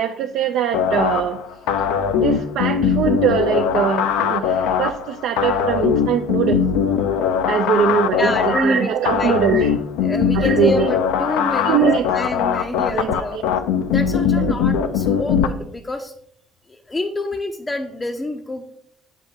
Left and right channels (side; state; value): both; normal; correlation 0.36